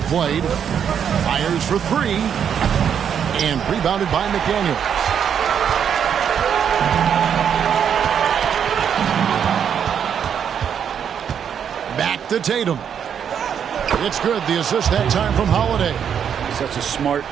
played. Fires for 3. and rebounded by McDaniels. Back to Tatum. It's good. The assist that time from Holiday. Such a smart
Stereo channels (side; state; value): left; quieter; 8.1 dB